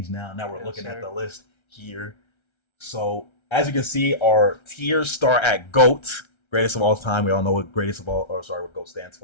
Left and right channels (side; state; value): right; late; 1.3 ms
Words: now. Now we're looking at the list here. So as you can see, our tiers start at GOAT, greatest of all time. We all know what what GOAT stands